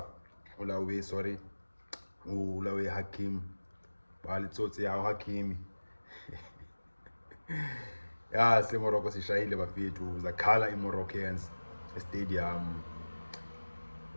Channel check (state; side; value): inverted; both; correlation -1.00